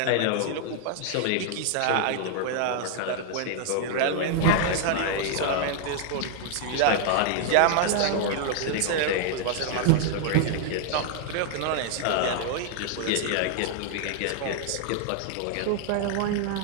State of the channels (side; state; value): both; different; correlation -0.01